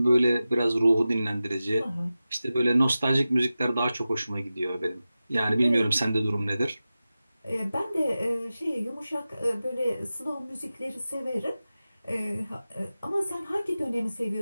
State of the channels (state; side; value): inverted; both; correlation -0.94